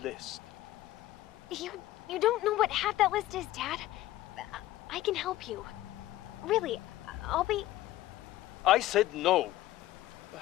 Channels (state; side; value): quieter; right; 15.2 dB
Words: You don't know what half that list is, Dad. I can help you. Really, I'll be... I said no.